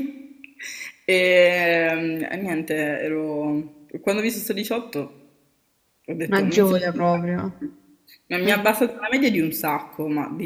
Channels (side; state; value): both; identical; correlation 1.00